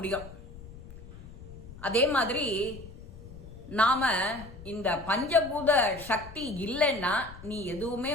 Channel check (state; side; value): noise; left; rumble, 15 dB below the sound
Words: அதே மாதிரி நாம இந்த பஞ்சபூத சக்தி இல்லைன்னா நீ எதுவுமே